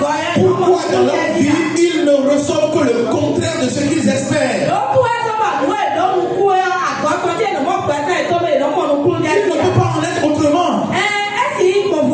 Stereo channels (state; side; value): identical; both; correlation 1.00